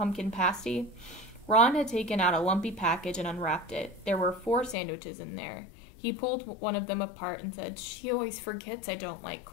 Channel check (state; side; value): drops out; right; at 4.8 s